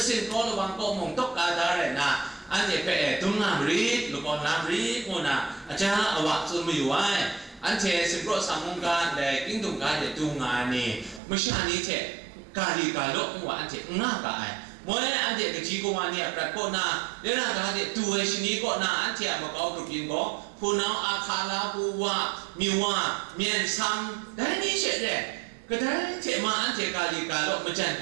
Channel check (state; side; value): drops out; left; at 11.2 s